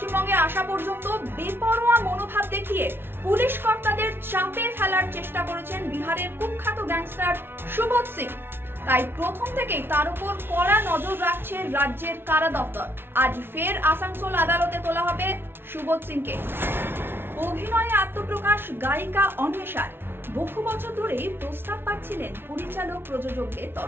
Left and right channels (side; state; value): left; late; 0.11 ms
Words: আসা পর্যন্ত বেপরোয়া মনোভাব দেখিয়ে পুলিশ কর্তাদের চাপে ফেলার চেষ্টা করেছেন বিহারের কুখ্যাত গ্যাংস্টার সুবোধ সিং। তাই প্রথম থেকেই তার উপর কড়া নজর রাখছে রাজ্যের কারা দপ্তর। আজ ফের আসানসোল আদালতে তোলা হবে সুবোধ সিংকে। অভিনয়ে আত্মপ্রকাশ গায়িকা অন্বেষার। বহু বছর ধরেই প্রস্তাব পাচ্ছিলেন পরিচালক প্রযোজকদের